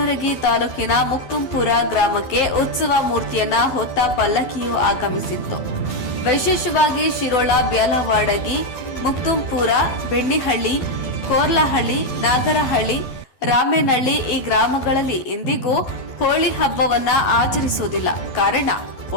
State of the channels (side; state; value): right; late; 12 ms